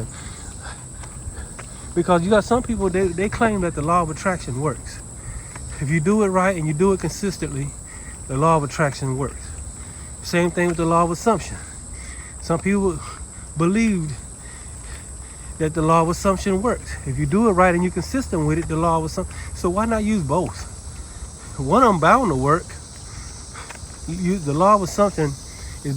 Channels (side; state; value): both; identical; correlation 1.00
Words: Because you got some people, they claim that the law of attraction works. If you do it right and you do it consistently, the law of attraction works. Same thing with the law of assumption. Some people believed that the law of assumption works. If you do it right and you're consistent with it, the law of assumption. So why not use both? One of them bound to work. The law of assumption is